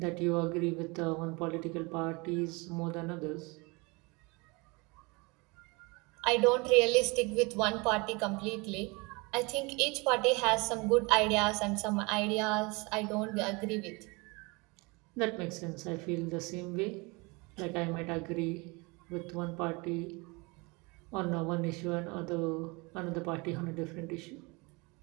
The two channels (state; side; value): quieter; left; 27.1 dB